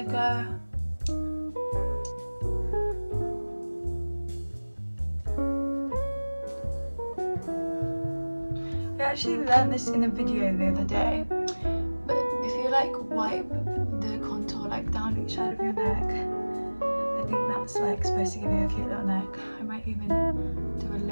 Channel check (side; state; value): both; inverted; correlation -1.00